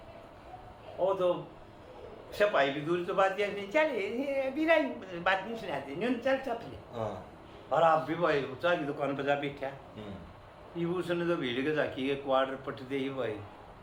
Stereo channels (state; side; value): identical; both; correlation 1.00